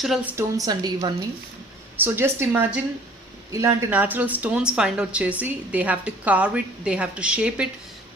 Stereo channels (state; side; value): normal; both; correlation 0.52